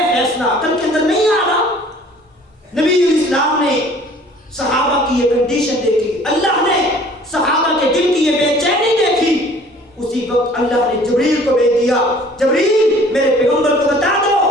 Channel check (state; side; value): normal; both; correlation 0.52